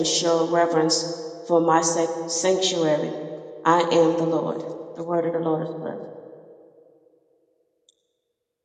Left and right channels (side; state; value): both; identical; correlation 1.00